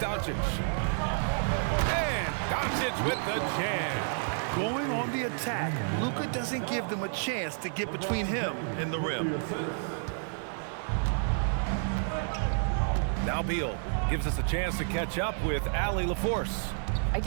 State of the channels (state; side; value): silent; left; digital silence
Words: And Doncic with the jam. Going on the attack, Luka doesn't give them a chance to get between him and the rim. Now Beal gives us a chance to catch up with Allie LaForce. I